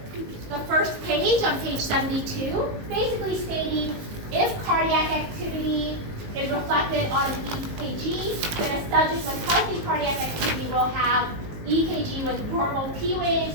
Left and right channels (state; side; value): late; left; 19 ms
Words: the first page, on page 72, basically stating if cardiac activity is reflected on an EKG, then a subject with healthy cardiac activity will have EKG with normal P waves,